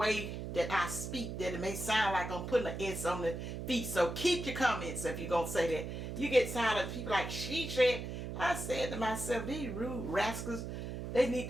that I speak that it may sound like I'm putting an S on the feet. So keep your comments if you're going to say that. You get tired of people like she said. I said to myself, these rude rascals, they need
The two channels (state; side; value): noise; right; hum, 6 dB below the sound